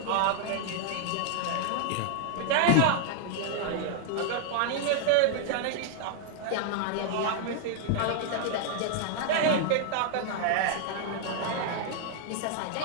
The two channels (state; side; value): different; both; correlation 0.00